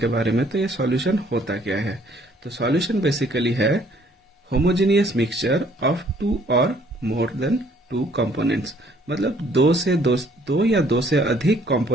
बारे में। तो ये सॉल्यूशन होता क्या है? तो सॉल्यूशन बेसिकली है होमोजेनियस मिक्सचर ऑफ टू और मोर देन टू कंपोनेंट्स। मतलब दो या दो से अधिक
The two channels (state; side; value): normal; both; correlation 0.62